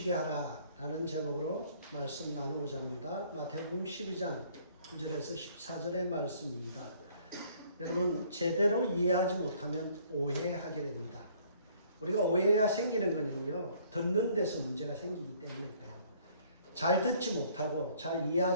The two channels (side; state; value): both; inverted; correlation -0.60